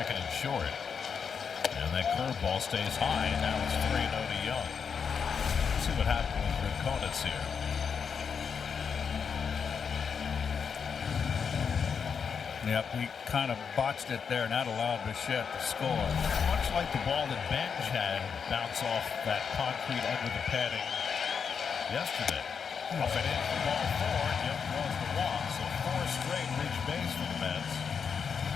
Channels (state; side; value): quieter; right; 6.4 dB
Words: and short. And that curveball stays high, and now it's 3-0 to Young. Let's see what happens with Rincones here. Yep, he kind of botched it there, and that allowed Bichette to score. Much like the ball that Benj had bounce off that concrete under the padding yesterday. Up and in for ball 4, Young draws the walk, so 4 straight reach base for the Mets.